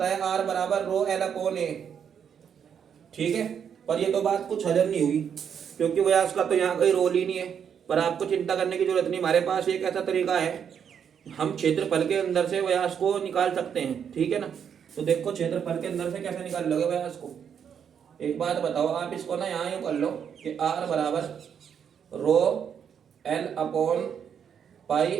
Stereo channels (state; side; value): quieter; left; 7.8 dB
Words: है R बराबर रो L अपॉन A। ठीक है, पर ये तो बात कुछ हजम नहीं हुई, क्योंकि व्यास का तो यहाँ कोई रोल ही नहीं है। पर आपको चिंता करने की जरूरत नहीं, हमारे पास एक ऐसा तरीका है, हम क्षेत्रफल के अंदर से व्यास को निकाल सकते हैं। ठीक है ना, तो देखो क्षेत्रफल के अंदर से कैसे निकाल लोगे व्यास को, एक बात बताओ आप इसको ना यहाँ यूँ कर लो कि R बराबर rho L upon